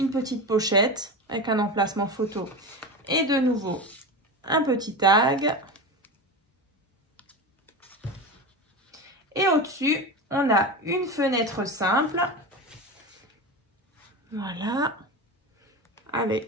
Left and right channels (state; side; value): normal; both; correlation 0.24